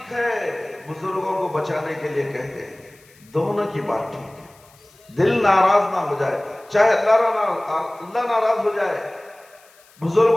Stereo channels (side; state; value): left; noise; hiss, 28 dB below the sound